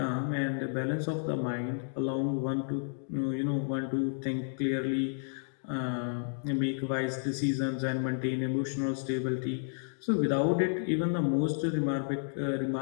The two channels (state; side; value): silent; right; digital silence